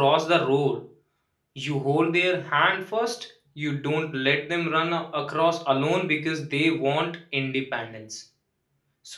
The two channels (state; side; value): identical; both; correlation 1.00